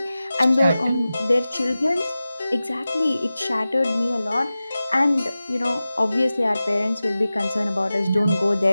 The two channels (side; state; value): both; inverted; correlation -0.96